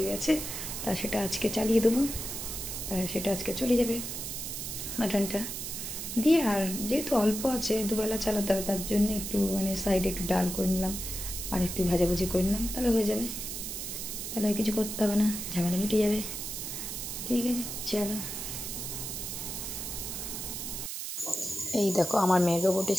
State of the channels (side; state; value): right; noise; hiss, 5 dB below the sound